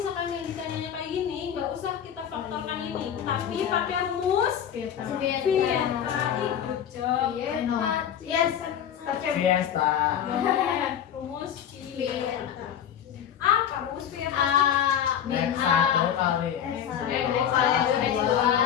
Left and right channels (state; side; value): quieter; right; 9.3 dB